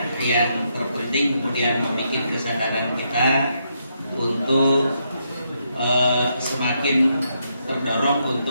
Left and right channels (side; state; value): both; inverted; correlation -0.79